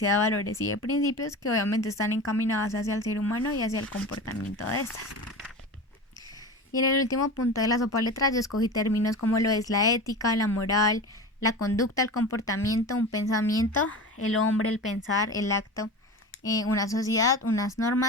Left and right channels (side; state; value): both; normal; correlation 0.30